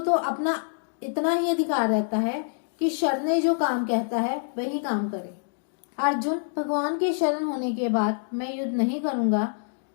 तो अपना इतना ही अधिकार रहता है कि शरणे जो काम कहता है वही काम करे। अर्जुन भगवान के शरण होने के बाद मैं युद्ध नहीं करूंगा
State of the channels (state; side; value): silent; right; digital silence